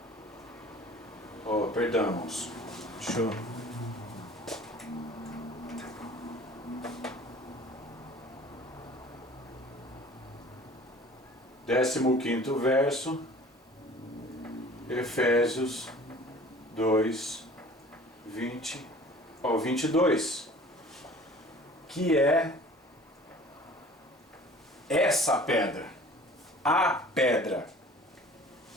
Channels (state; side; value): normal; both; correlation 0.47